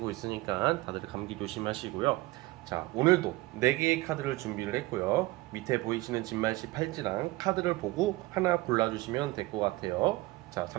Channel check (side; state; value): left; quieter; 20.4 dB